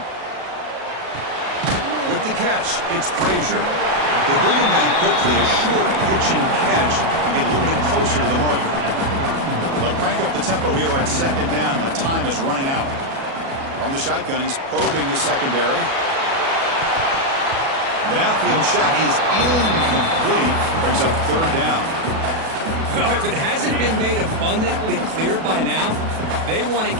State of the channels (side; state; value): left; late; 37 ms